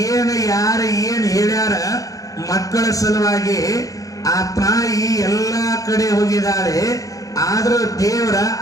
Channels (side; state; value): right; late; 0.17 ms